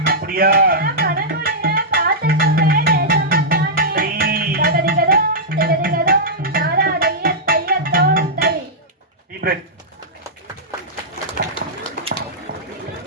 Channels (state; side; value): normal; both; correlation -0.11